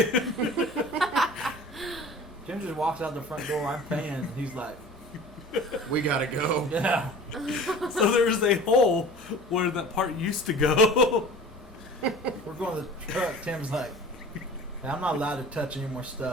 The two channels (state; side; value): normal; both; correlation 0.41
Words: Jim just walks out the front door, I'm paying, and he's like, We gotta go. yeah. So there's a hole where that part used to go. We're going to the truck. Tim's like, "Hey, I'm not allowed to touch any more